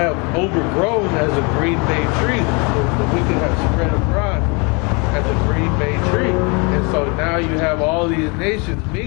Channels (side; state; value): right; quieter; 30.9 dB